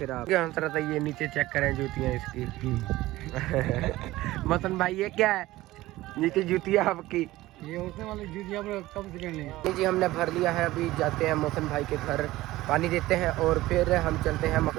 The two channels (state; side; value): quieter; left; 17.3 dB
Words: आप। था ये नीचे चेक करें जूतियाँ इसकी। मसन भाई ये क्या है? नीचे जूतियाँ आपकी, ये उठने वाली जूतियाँ कब से करनी जी हमने भर लिया है। अभी जाते हैं मौसन भाई के घर, पानी देते हैं और फिर हम चलते हैं